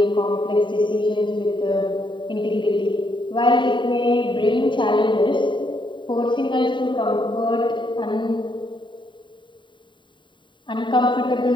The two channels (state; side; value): late; right; 0.23 ms